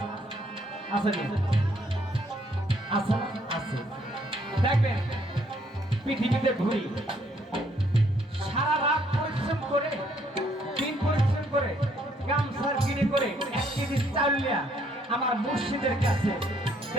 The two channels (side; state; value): both; normal; correlation 0.67